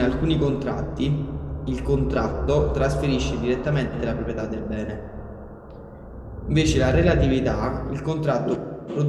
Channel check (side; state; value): both; identical; correlation 1.00